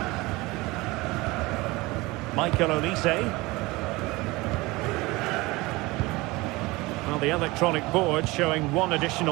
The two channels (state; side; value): quieter; left; 21.9 dB